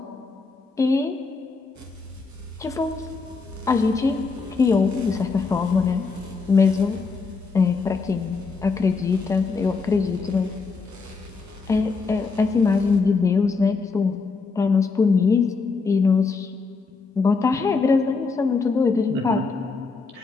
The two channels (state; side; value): quieter; right; 4.5 dB